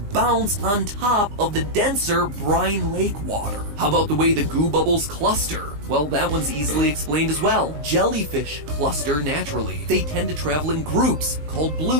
on top of the denser brine lake water. How about the way the goo bubbles cluster? Well, that one's easily explained as well. Jellyfish cluster naturally. They tend to travel in groups called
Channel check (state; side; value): late; left; 20 ms